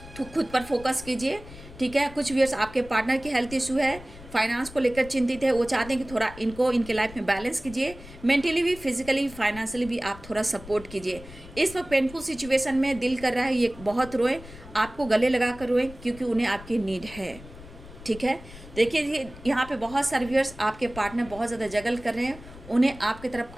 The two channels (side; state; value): left; noise; rumble, 17 dB below the sound